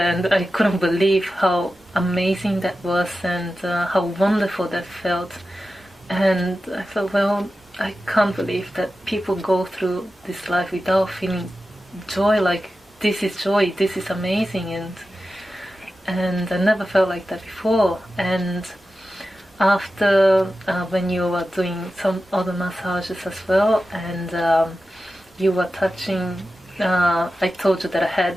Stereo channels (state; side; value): normal; both; correlation 0.92